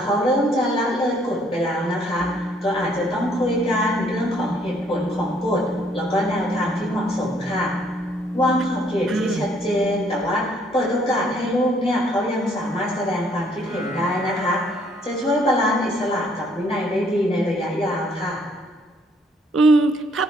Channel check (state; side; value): normal; both; correlation 0.65